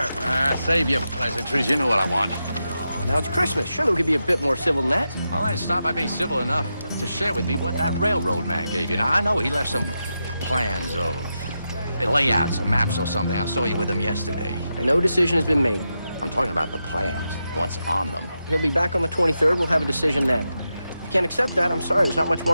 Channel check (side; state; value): both; inverted; correlation -0.88